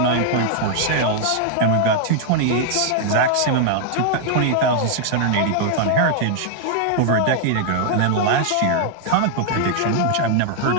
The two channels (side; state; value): both; different; correlation 0.00